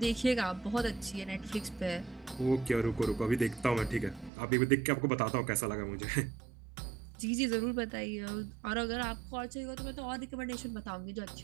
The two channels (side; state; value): left; drops out; at 4.3 s